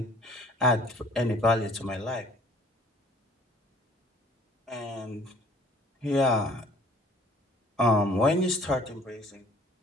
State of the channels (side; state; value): both; normal; correlation 0.54